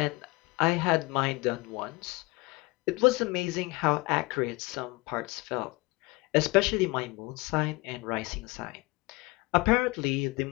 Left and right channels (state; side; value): quieter; right; 24.2 dB